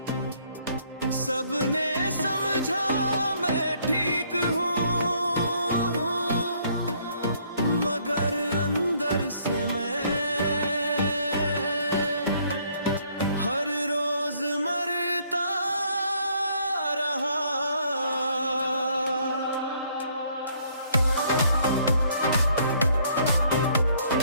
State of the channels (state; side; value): inverted; both; correlation -0.65